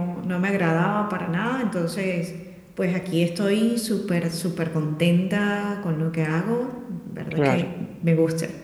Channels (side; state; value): both; identical; correlation 1.00